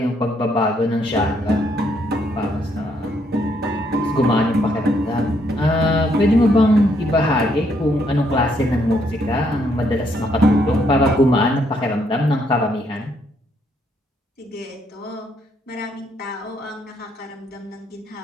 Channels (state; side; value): normal; both; correlation 0.72